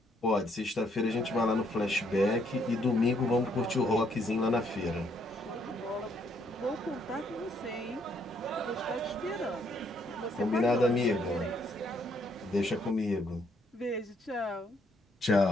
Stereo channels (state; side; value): normal; both; correlation 0.70